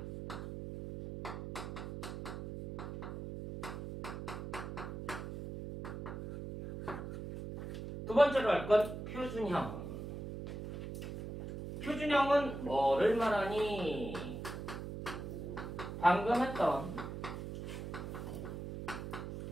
두 번째로 할 건 표준형. 표준형은 뭐를 말하니? 방금 했던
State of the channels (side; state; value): right; noise; hum, 7 dB below the sound